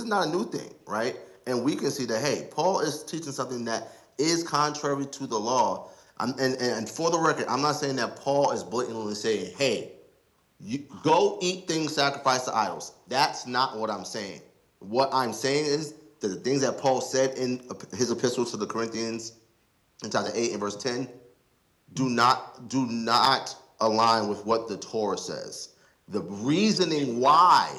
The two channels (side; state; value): both; identical; correlation 1.00